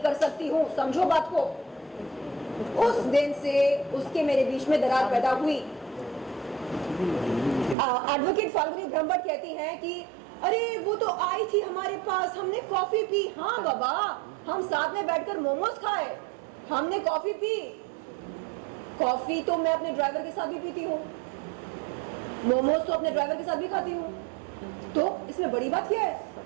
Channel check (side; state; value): left; drops out; at 7.8 s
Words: सकती हूँ, समझो बात को। उस दिन से उसके मेरे बीच में दरार पैदा हुई। एडवोकेट फाल्गुनी ब्रह्मभट्ट कहती हैं कि अरे वो तो आई थी हमारे पास, हमने कॉफी पी। हाँ बाबा, हम साथ में बैठकर मोमोज खाए, हमने कॉफी पी। कॉफी तो मैं अपने ड्राइवर के साथ भी पीती हूँ, मोमोज तो अपने ड्राइवर के साथ भी खाती हूँ। तो इसमें बड़ी बात क्या है?